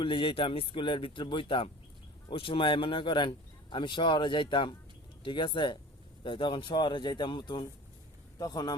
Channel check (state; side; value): normal; both; correlation 0.39